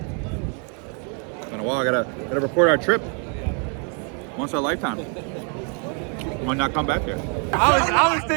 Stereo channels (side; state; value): left; quieter; 39.6 dB